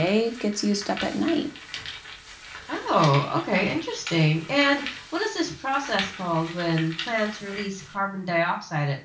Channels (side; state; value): both; identical; correlation 1.00